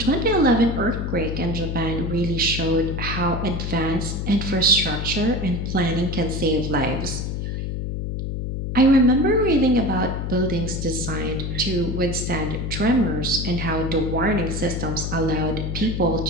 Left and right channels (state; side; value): noise; left; hum, 3 dB below the sound